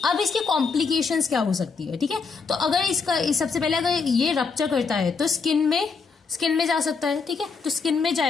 अब इसकी कॉम्प्लिकेशंस क्या हो सकती है, ठीक है। तो अगर इसका सबसे पहले अगर ये रप्चर करता है तो स्किन में जा सकता है, ठीक है। तो स्किन में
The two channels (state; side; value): quieter; right; 5.0 dB